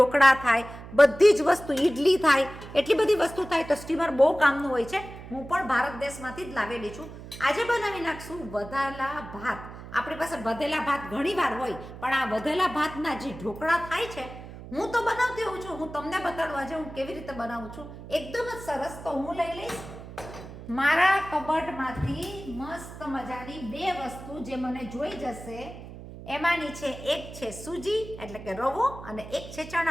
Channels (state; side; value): noise; right; hum, 14 dB below the sound